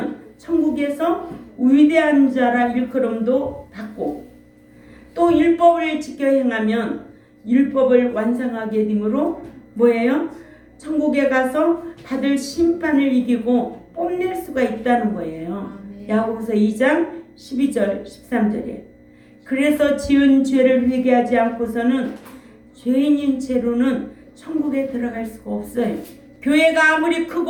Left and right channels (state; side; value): identical; both; correlation 1.00